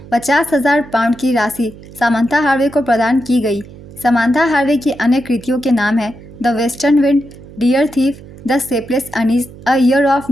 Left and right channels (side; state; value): right; noise; hum, 18 dB below the sound